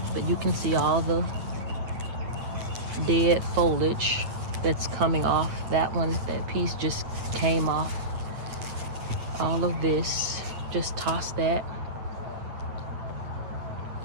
But you can see all the dead foliage that's coming off. That one, that piece just came off. All of this, just toss that.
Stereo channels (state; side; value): late; left; 9.0 ms